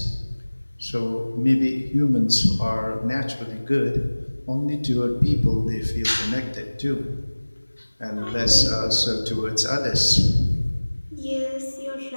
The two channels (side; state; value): both; inverted; correlation -1.00